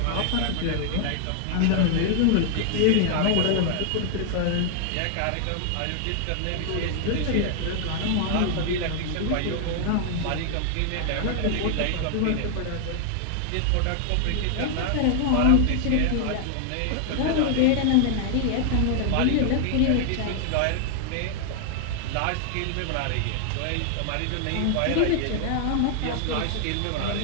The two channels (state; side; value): different; both; correlation 0.00